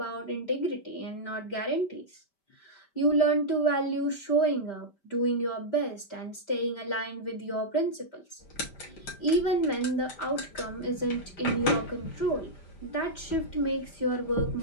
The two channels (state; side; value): late; right; 5.1 ms